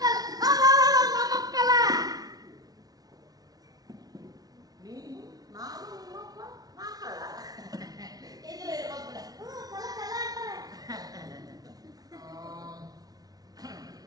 ಕಳ್ಳ. ನೀನು ನಾನು ನಿಮ್ಮಪ್ಪ ನಾ ಕಳ್ಳ. ಇದ್ರೆ ಇರ್ಬೇಕು ಬಿಡ. ಕಳ್ಳ ಕಳ್ಳ ಅಂತಾರೆ.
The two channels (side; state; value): left; late; 0.18 ms